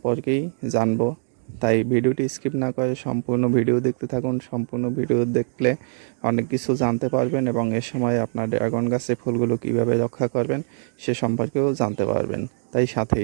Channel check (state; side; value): silent; left; 63 dB below the other